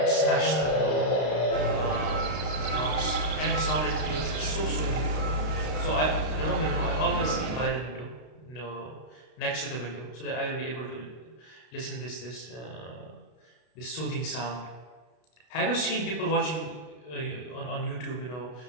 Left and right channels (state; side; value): late; right; 32 ms